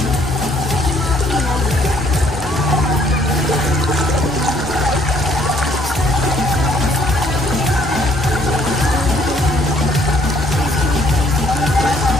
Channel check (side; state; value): both; normal; correlation 0.64